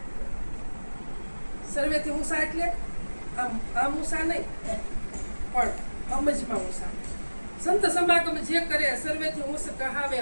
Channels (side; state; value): both; inverted; correlation -1.00